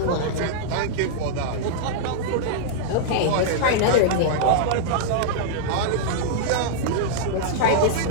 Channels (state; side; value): different; both; correlation -0.02